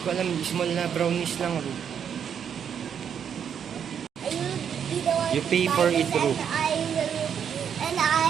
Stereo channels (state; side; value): quieter; left; 8.1 dB